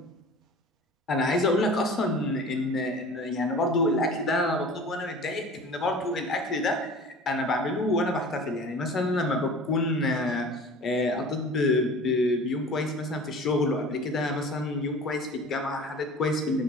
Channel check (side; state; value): both; normal; correlation 0.41